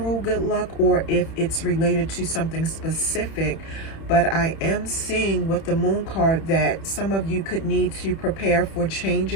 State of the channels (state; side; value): late; right; 31 ms